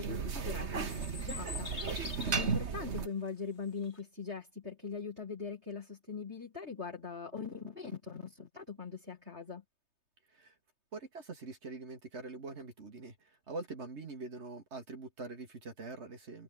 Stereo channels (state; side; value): late; left; 3.2 ms